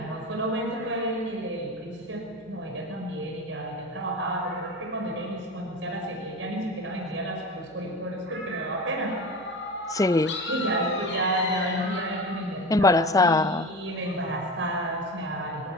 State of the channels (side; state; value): right; noise; hum, 29 dB below the sound